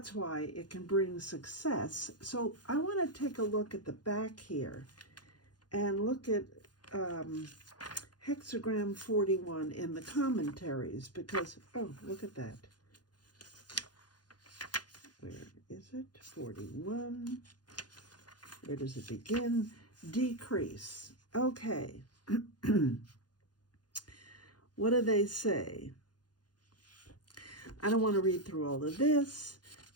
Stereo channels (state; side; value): late; right; 0.69 ms